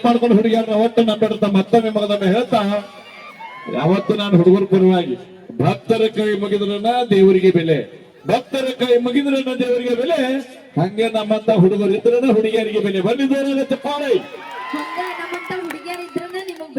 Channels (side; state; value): both; identical; correlation 1.00